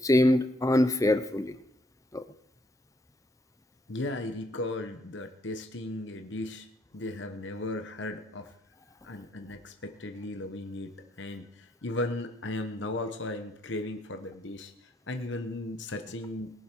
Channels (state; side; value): normal; both; correlation 0.71